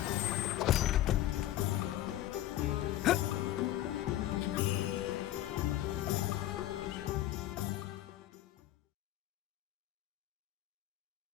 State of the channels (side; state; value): right; quieter; 13.8 dB